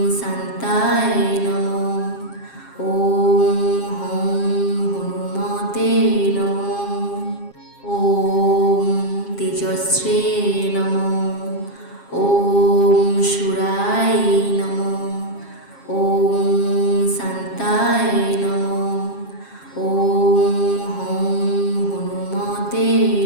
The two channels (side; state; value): right; late; 7.4 ms